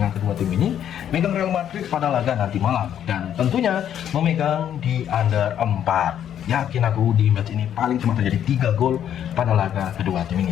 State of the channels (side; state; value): right; quieter; 9.9 dB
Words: kedua tim ini. Megang Real Madrid pada laga nanti malam dan tentunya memegang di under 4. Yakin aku di match ini paling cuma terjadi 3 gol pada laga kedua tim